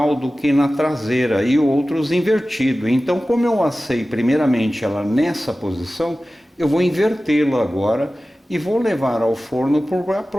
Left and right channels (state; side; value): normal; both; correlation 0.96